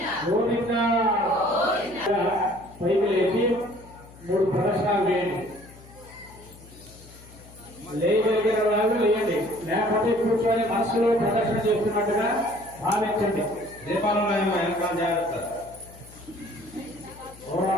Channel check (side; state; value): left; noise; hum, 21 dB below the sound